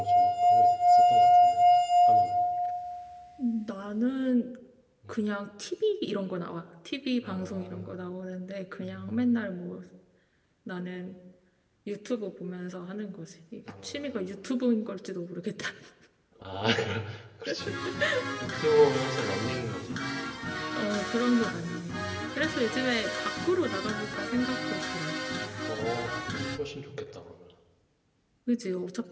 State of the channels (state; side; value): identical; both; correlation 1.00